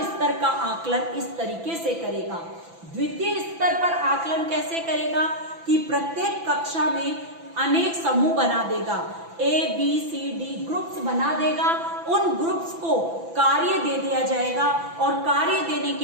स्तर का आकलन इस तरीके से करेगा। द्वितीय स्तर पर आकलन कैसे करेगा कि प्रत्येक कक्षा में अनेक समूह बना देगा, A, B, C, D groups बना देगा उन ग्रुप्स को कार्य दे दिया जाएगा और कार्य देने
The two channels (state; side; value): late; left; 6.0 ms